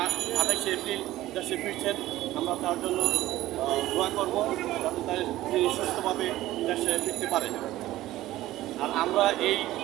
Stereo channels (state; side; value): quieter; left; 15.7 dB